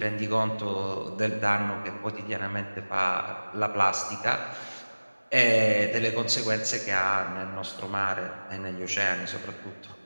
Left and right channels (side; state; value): both; inverted; correlation -1.00